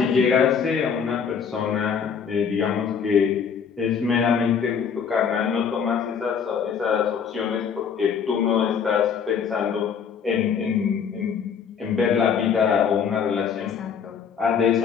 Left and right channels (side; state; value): right; quieter; 6.9 dB